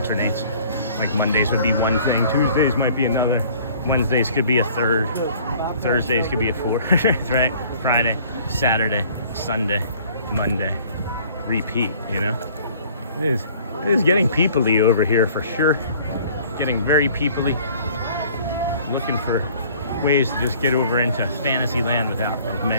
Like Mondays would be one thing, Tuesdays might be another, Wednesdays could be a third, Thursdays could be a fourth, right? Friday, Saturday, Sunday, Monday, repeat, you know? It is getting people-y over here for sure. Getting very people-y. Looking for ways to just get over into Fantasyland without as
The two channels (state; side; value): inverted; both; correlation -0.53